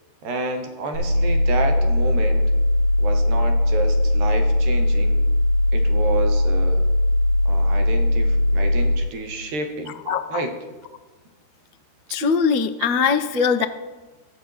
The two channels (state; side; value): late; left; 13 ms